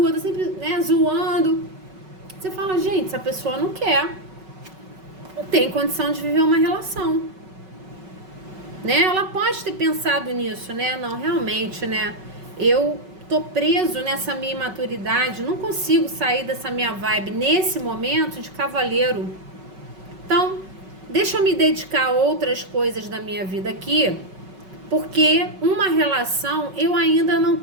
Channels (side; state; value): left; late; 5.3 ms